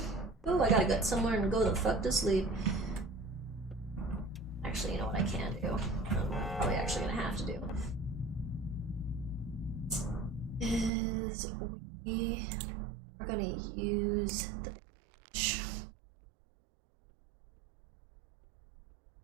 Ooh, I gotta get somewhere and go the fuck to sleep. Actually, you know what I can do? I'm probably actually gonna have to do. Is we are gonna use the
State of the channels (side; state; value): left; drops out; at 10.9 s